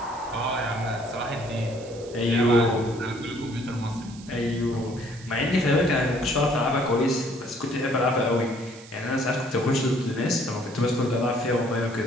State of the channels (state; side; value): noise; right; hiss, 20 dB below the sound